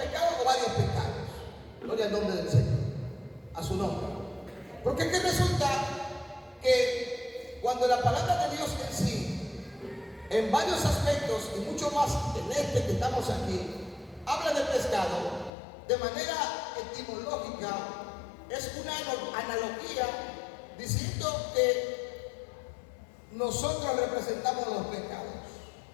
o varios pecados. Gloria al nombre del Señor. a su nombre. Porque es que resulta que cuando la palabra de Dios en sí, en varios aspectos y mucho más en este que estamos aquí, habla del pescado, de manera etimológica, es una analogía diciendo que nosotros representamos los pecados.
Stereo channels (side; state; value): right; drops out; at 15.5 s